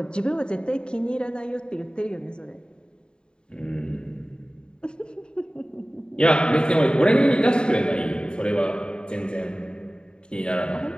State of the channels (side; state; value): right; late; 0.049 ms